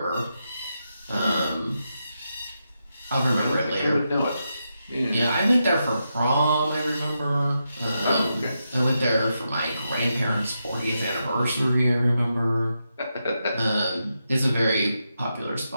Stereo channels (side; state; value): both; inverted; correlation -0.86